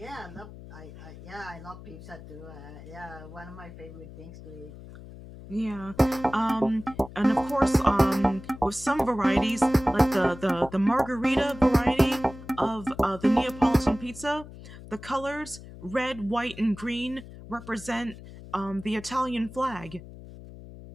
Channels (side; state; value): left; noise; hum, 16 dB below the sound